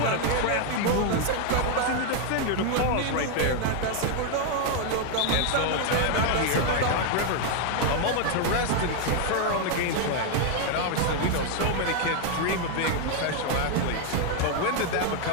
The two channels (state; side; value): different; both; correlation 0.00